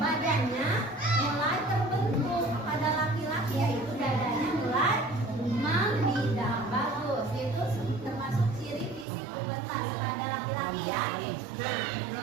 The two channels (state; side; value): drops out; left; at 9.1 s